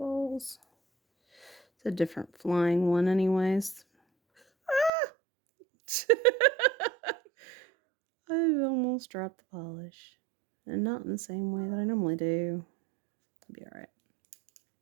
It's a different flying one anyways. Ah! I almost dropped the polish. and not in the same way that I normally do. It'll be alright.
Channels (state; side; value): drops out; left; at 4.9 s